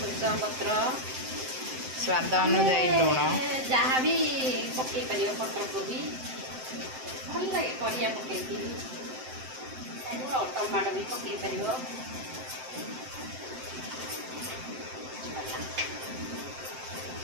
पत्र स्वाद अनुजाई लुण जहाँ भी पकई पार पत्र कोबी भल लगे परिया पकई टमाटो भी पकई पार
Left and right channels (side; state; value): left; late; 7.7 ms